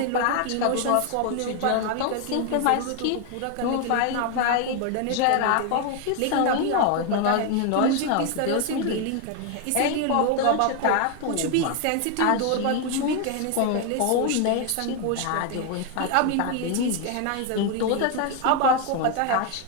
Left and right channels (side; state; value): both; different; correlation 0.01